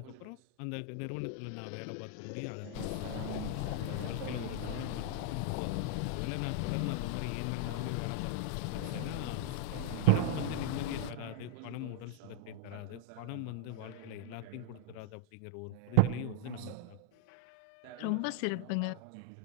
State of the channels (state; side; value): different; both; correlation -0.01